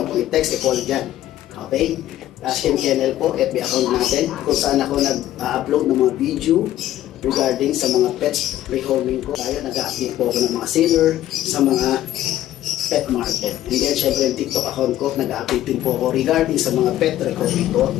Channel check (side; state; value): right; quieter; 13.4 dB